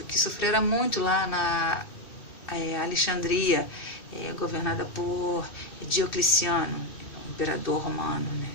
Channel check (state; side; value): late; right; 2.9 ms